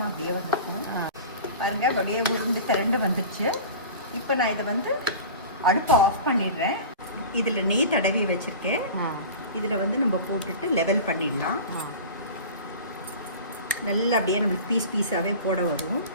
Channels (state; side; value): inverted; both; correlation -0.36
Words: அப்படியே வந்துருக்கும். பாருங்க, அப்படியே உருண்டு திரண்டு வந்துடுச்சு. இப்போ நான் இதை வந்து அடுப்பை ஆஃப் பண்ணிடுறேன். இதில் நெய் தடவி வச்சுருக்கேன். இதில் வந்து நம்ம போட்டுட்டு லெவல் பண்ணிடலாம். நல்லா அப்படியே நம்மளுக்கு பீஸாகவே போட வரும்.